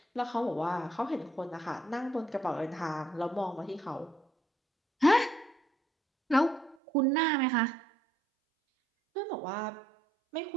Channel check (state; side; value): drops out; left; at 6.8 s